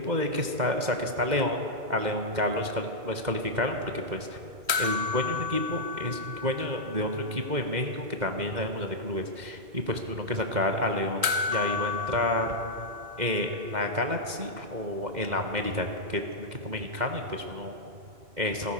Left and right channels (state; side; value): late; left; 2.1 ms